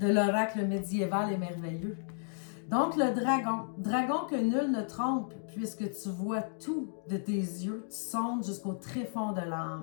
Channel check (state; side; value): silent; right; digital silence